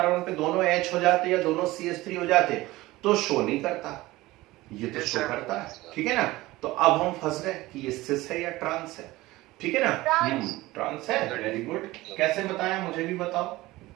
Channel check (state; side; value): quieter; left; 18.8 dB